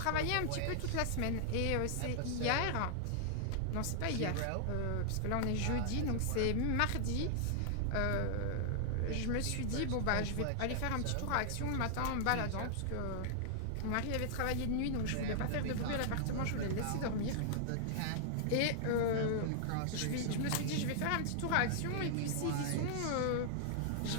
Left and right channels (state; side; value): different; both; correlation -0.01